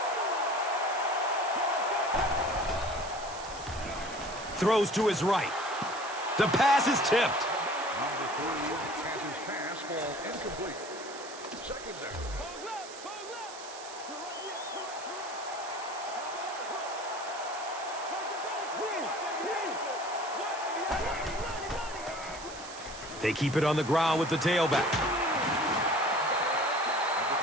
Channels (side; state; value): right; noise; hiss, 14 dB below the sound